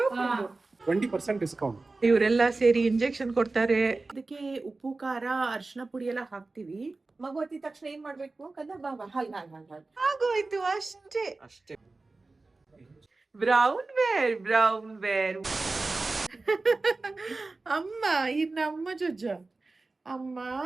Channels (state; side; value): quieter; left; 3.5 dB